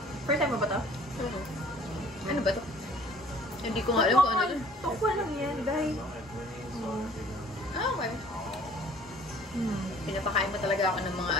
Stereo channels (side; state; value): both; normal; correlation 0.53